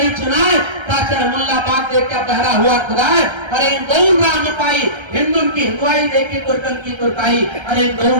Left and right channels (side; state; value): left; late; 1.3 ms